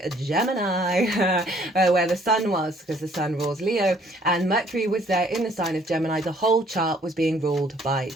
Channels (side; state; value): both; normal; correlation 0.61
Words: Gemini, where the sun was, because the sun rules Leo, and Mercury was there in the sign of Gemini. The whole chart was being ruled by